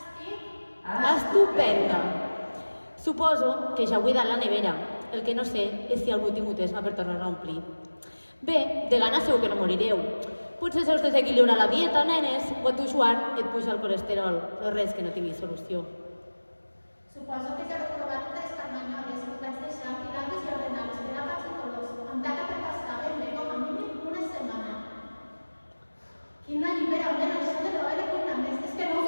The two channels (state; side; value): inverted; both; correlation -1.00